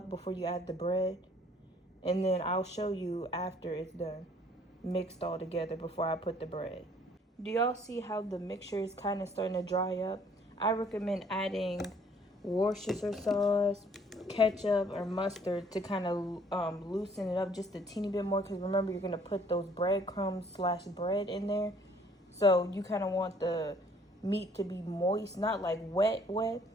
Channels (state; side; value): normal; both; correlation 0.59